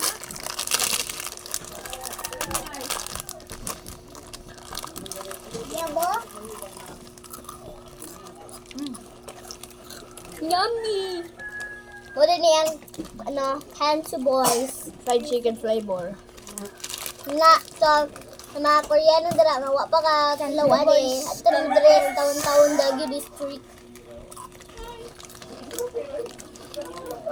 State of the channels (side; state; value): both; identical; correlation 1.00